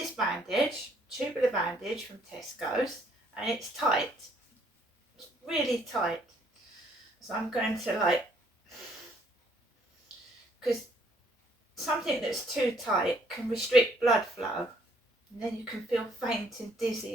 bandage, tubular bandage from Tesco's, and it's tight. It's really tight. So I'm going to because something that's too tight can restrict blood flow, and then you can feel faint and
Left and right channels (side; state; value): both; normal; correlation 0.65